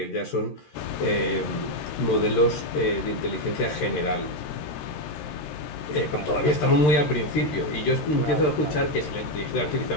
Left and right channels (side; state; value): right; late; 13 ms